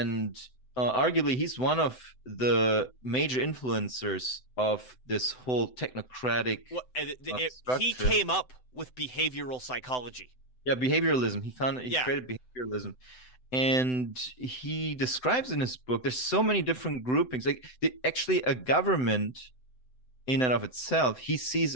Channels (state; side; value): late; right; 7.9 ms